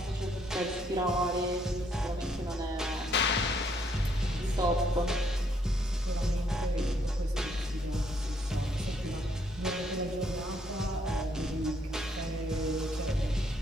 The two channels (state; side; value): normal; both; correlation 0.70